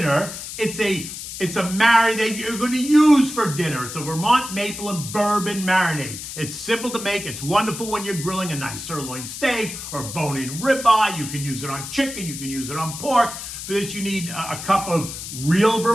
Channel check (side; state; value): left; noise; hiss, 9 dB below the sound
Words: It's a marinade that you're going to use for dinner. It's a Vermont Maple and Bourbon Marinade. It's simple to make. It's wonderful when you're grilling a nice sirloin steak or bone-in ribeye. You can use it on chicken. You can use it on pork. For this, you need a cup of real